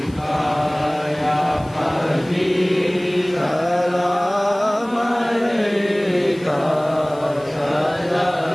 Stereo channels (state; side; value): noise; left; hiss, 25 dB below the sound